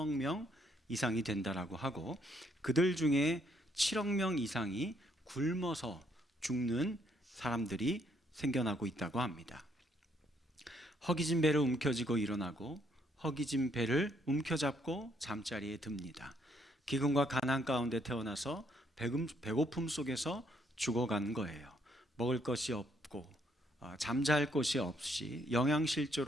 명 이상이 된다라고 하고, 그들 중에 7억 명 이상이 굶어서 죽는 사람들이 생겨나고 있다고 합니다. 허기진 배를 움켜쥐고 일어나고 허기진 배를 움켜잡고 잠자리에 듭니다. 기근과 가난 가운데 태어나서 배고픔 속에서 죽어간 거예요. 먹을 것이 없고 잠잘 곳이 없이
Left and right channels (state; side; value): normal; both; correlation 0.70